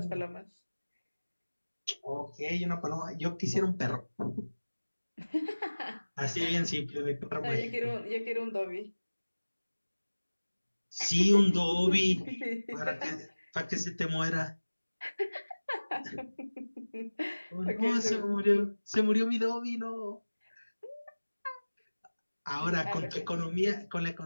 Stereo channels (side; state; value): both; inverted; correlation -1.00